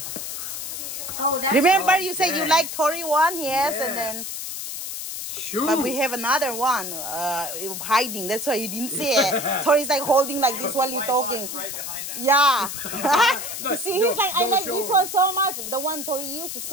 Oh, that's. Remember Oh, you said you dang. like Tori one? Yes, and then... Shoot. But we have another one hiding. That's why you didn't see it. Tori's like holding like this while you're talking. Right behind that. Yeah. No, You see, he's like, I don't like show this him. one so much. The one Tori used, the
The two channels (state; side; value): noise; left; hiss, 6 dB below the sound